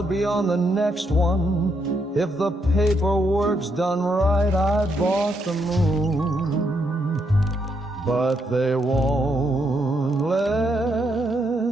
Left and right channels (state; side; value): normal; both; correlation 0.77